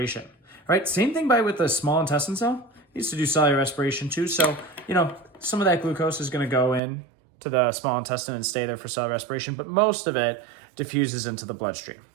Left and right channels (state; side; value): drops out; left; at 6.8 s